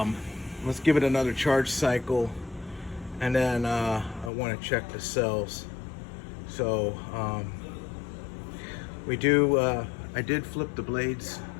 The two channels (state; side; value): drops out; right; at 4.3 s